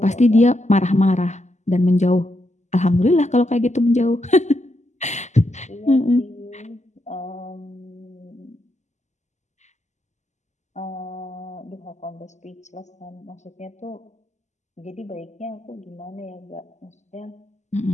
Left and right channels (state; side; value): late; right; 0.34 ms